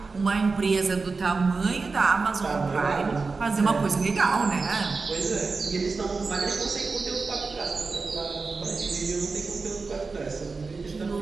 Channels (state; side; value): quieter; left; 4.2 dB